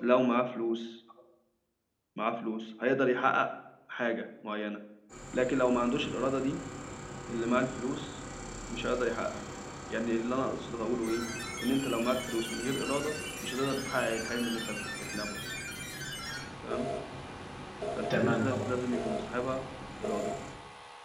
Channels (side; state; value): both; identical; correlation 1.00